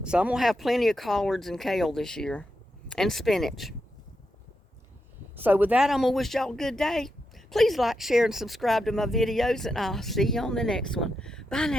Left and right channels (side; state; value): both; normal; correlation 0.85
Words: So I'm going to have plenty of collards and kale this year. And spinach. So with that, I'm going to wish y'all a good day. Please like, share, and subscribe to my videos. And I'll see you on the next one. Bye